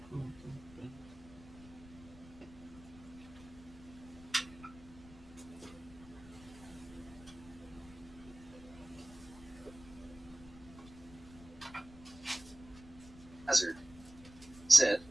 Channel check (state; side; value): noise; left; rumble, 19 dB below the sound